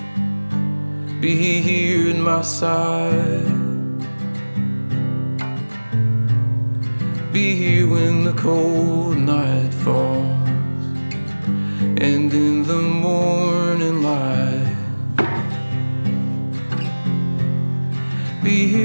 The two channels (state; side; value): inverted; both; correlation -1.00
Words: be here at my side. Be here when the cold night falls and in the morning light. Be